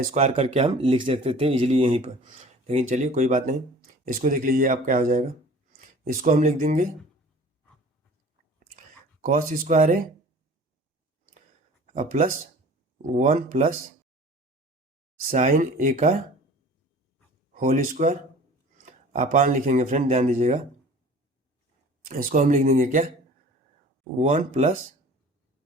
स्क्वायर करके हम लिख सकते थे इजीली यहीं पर, लेकिन चलिए कोई बात नहीं। इसको देख लीजिए आप क्या हो जाएगा, इसको हम लिख देंगे cos square A plus 1 plus sine ए का होल स्क्वायर, अपान लिखेंगे फ्रेंड, ध्यान दीजिएगा। इसको हम लिख देंगे क्या, 1 plus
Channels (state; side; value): normal; both; correlation 0.45